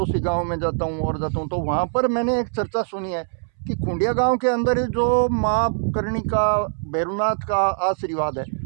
गांव में जाता हूँ और जाता हूँ, तो वहाँ पर मैंने एक चर्चा सुनी है कि खुंडिया गांव के अंदर जो माँ करणी का, भैरवनाथ का आशीर्वाद है,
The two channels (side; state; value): left; silent; 64 dB below the other